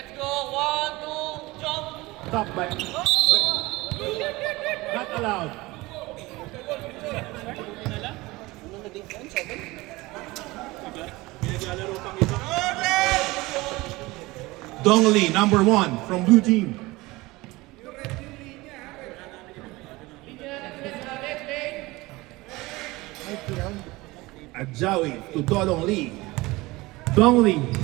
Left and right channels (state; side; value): quieter; left; 21.1 dB